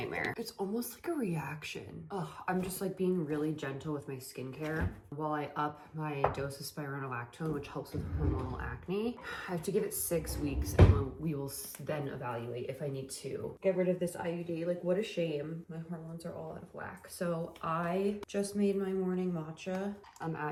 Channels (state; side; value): identical; both; correlation 1.00